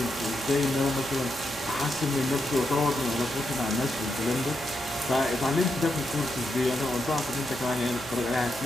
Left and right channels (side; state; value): both; normal; correlation 0.83